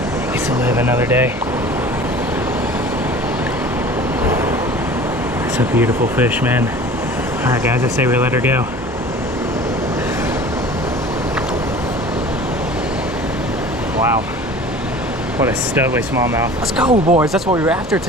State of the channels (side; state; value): both; normal; correlation 0.42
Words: Gets to live another day. It's a beautiful fish, man. All right, guys, I say we let her go. Wow, what a studly smallmouth. Let's go, boys. That's what we were after